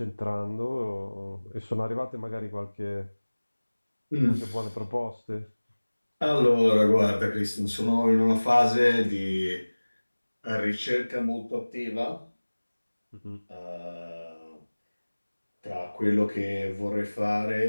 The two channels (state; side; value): inverted; both; correlation -1.00